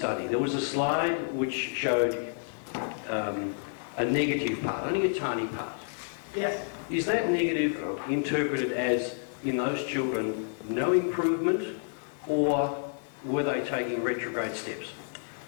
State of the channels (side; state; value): right; silent; digital silence